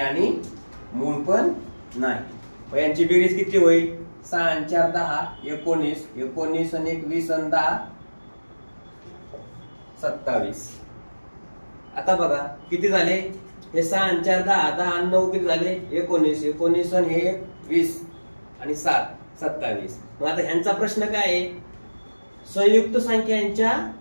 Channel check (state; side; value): inverted; both; correlation -1.00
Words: मूळ पण नाही. यांची बेरीज किती होईल, 6 आणि 4 10, 19, 19 आणि 1 20 आणि 10 27. आता बघा किती झाले, हे 6 आणि 4 10, 10 आणि 9 किती झाले, 19, 19 आणि 1 20 आणि 7 27. मग आता ह्यांचा प्रश्न काय आहे, संयुक्त संख्यांच्या